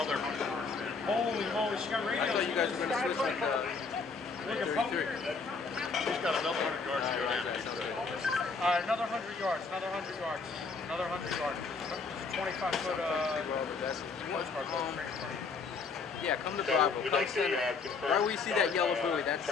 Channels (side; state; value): right; quieter; 4.6 dB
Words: 100 yards down. Holy moly, she got radio. I thought you guys were going to switch with 33. He's got another 100 yards to go down. Another 100 yards, another 100 yards, another 100 yards. 25-foot postcard boat right in front of you. Yeah, come to Bravo. Come center. Where we see that yellow buoy, that's